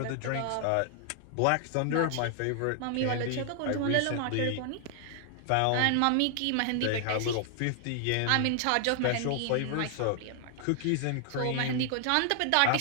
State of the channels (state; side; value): different; both; correlation 0.00